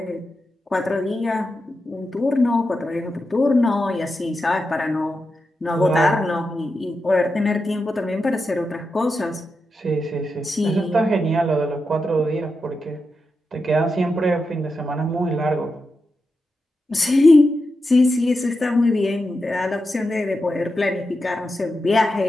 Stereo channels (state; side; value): normal; both; correlation 0.88